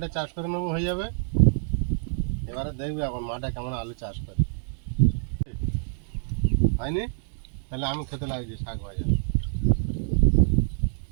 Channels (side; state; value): left; silent; digital silence